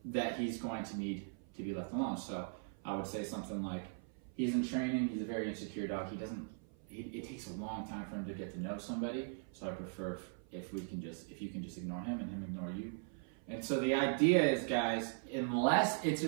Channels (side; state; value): left; silent; 51 dB below the other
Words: that he's going to need to be left alone. So I would say something like, he's in training. He's a very insecure dog. It takes a long time for him to get to know somebody. So I prefer if you can just ignore him and him ignore you. And so the idea is, guys, unless it's a